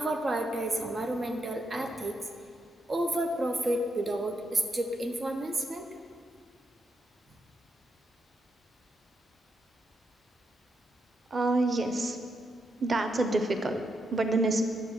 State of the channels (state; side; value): normal; both; correlation 0.81